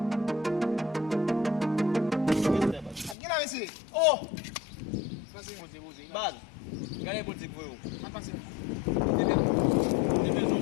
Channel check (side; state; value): right; drops out; at 3.2 s